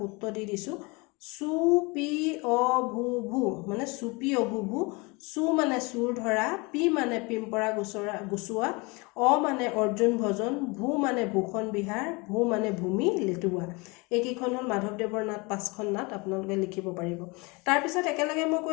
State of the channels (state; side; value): quieter; right; 27.2 dB